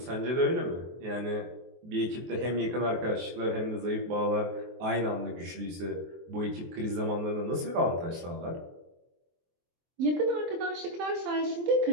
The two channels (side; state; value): left; late; 23 ms